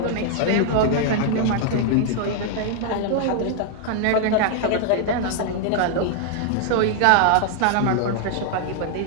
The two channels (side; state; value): both; different; correlation 0.00